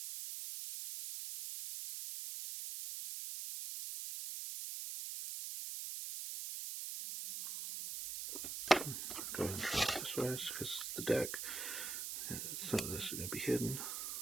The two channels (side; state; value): right; noise; hiss, 4 dB below the sound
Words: Go ahead and try it this way because the deck, some of this is going to be hidden.